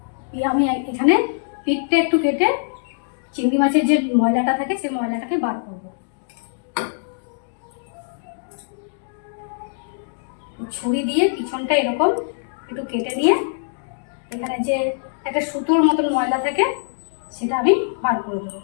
আমি এখানে পিঠটা একটু কেটে চিংড়ি মাছের যে ময়লাটা থাকে সেই ময়লাটাকে বার করব। ছুরি দিয়ে পিছনটা এরকম একটু কেটে নিয়ে এখানে যে একটা সুতোর মতন ময়লা থাকে সেটা আমি বার করে দেবো।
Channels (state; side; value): silent; right; digital silence